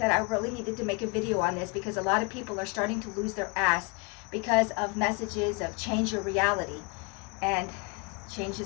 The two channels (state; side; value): quieter; right; 30.1 dB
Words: I really needed to make a video on this, because a lot of people are starting to lose their ass because of messages of change your reality. And change